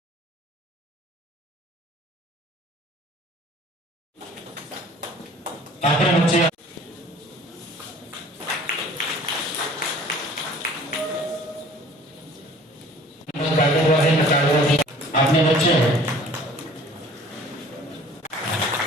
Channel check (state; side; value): normal; both; correlation 0.50